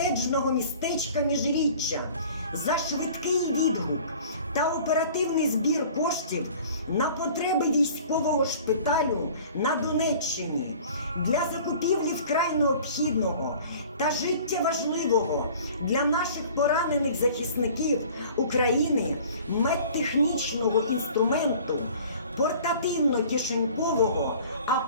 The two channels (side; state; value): both; inverted; correlation -0.47